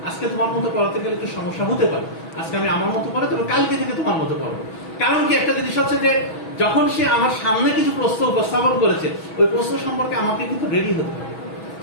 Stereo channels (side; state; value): right; late; 6.2 ms